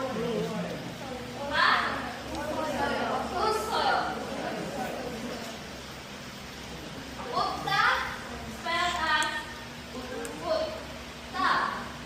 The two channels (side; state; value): both; identical; correlation 1.00